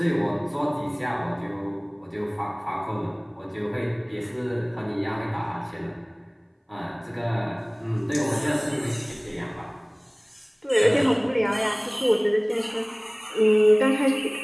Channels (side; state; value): both; identical; correlation 1.00